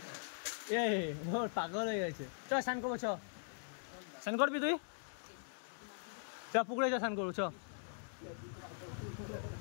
ওর পাগল হয়ে গেছে। চ স্নান করবো, চ স্নান করবি তুই, চ পুকুরে চ স্নান করবো, চ।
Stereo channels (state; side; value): silent; right; digital silence